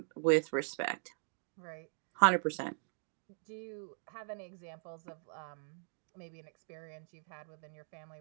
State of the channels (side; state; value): left; silent; digital silence